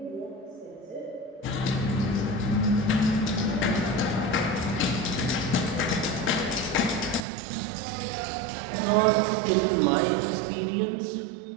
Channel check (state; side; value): drops out; left; at 7.2 s